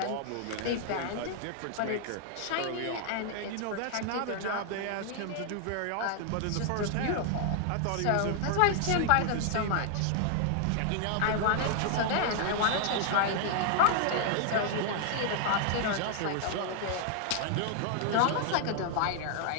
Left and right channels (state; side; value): different; both; correlation 0.00